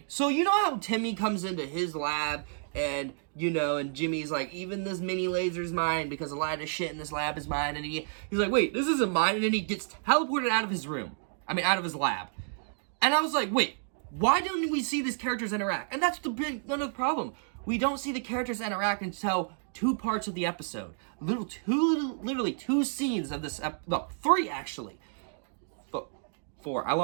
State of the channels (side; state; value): left; silent; digital silence